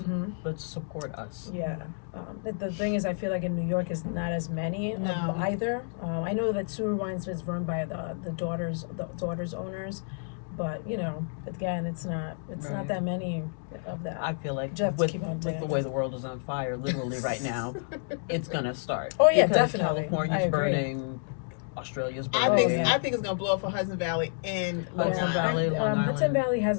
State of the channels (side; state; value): right; silent; digital silence